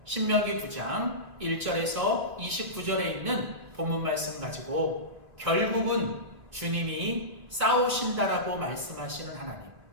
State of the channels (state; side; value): late; left; 2.6 ms